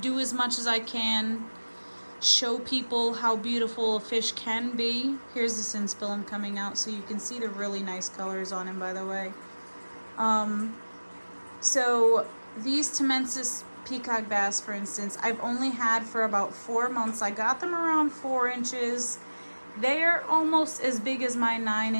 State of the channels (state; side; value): inverted; both; correlation -1.00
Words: as much as I can. Show people how beautiful a fish can be. Here's the Synspilum coming out, so you can see the really nice colors on him, by the way. So these Tamensis Peacock Bass, for instance, I've only had for about 4 months. I got them around 4 inches. They're almost as big as my